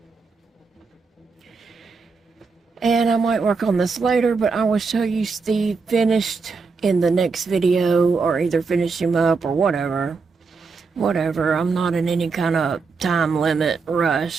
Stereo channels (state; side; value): quieter; left; 4.7 dB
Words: And I might work on this later, but I will show you Steve finished in the next video, or either finish him up or whatever. Whatever, I'm not in any kind of time limit